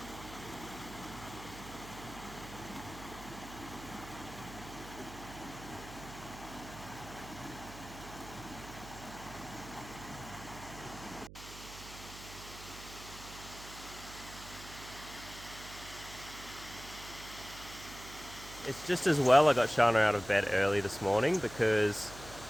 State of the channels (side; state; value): right; noise; hum, 14 dB below the sound